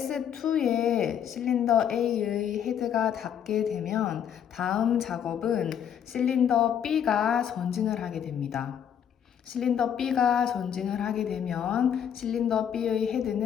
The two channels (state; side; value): quieter; right; 8.9 dB